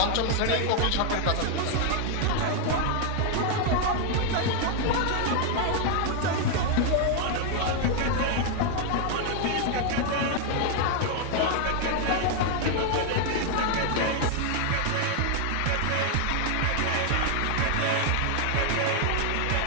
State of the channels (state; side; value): different; both; correlation 0.00